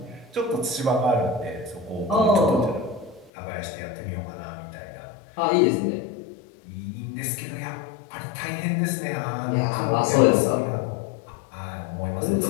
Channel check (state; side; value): drops out; right; at 3.3 s